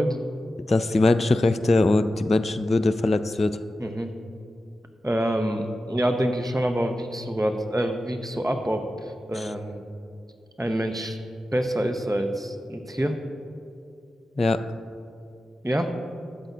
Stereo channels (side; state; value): both; normal; correlation 0.92